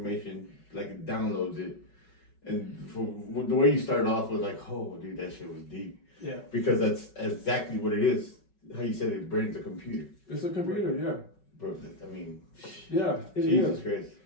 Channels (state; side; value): late; right; 5.4 ms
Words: like it downloads it, and the way you started off was like, oh, dude, that shit was deep. Yeah. Because that's exactly what it is. How you said it, brain's a computer. It's a computer, yeah. Bro, I mean, yeah, it Jesus is. Christ.